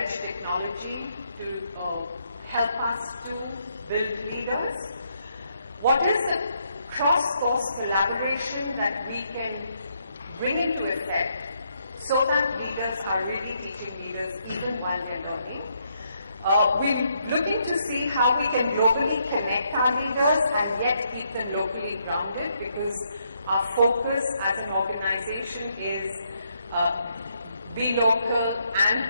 technology to help us to build leaders. What is the cross-course collaboration that we can bring into effect so that leaders are really teaching leaders even while they're learning? We're looking to see how we can globally connect our leaders and yet keep them locally grounded, because our focus as an organization is be local and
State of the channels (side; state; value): both; inverted; correlation -0.75